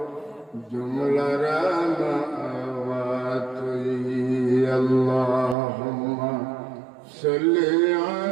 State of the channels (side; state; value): left; drops out; at 5.6 s